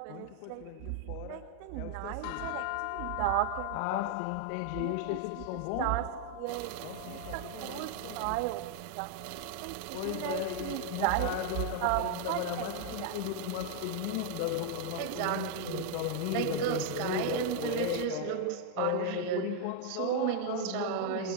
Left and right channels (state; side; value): different; both; correlation 0.00